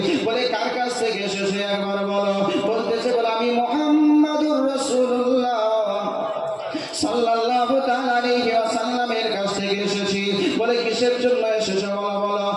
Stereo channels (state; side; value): identical; both; correlation 1.00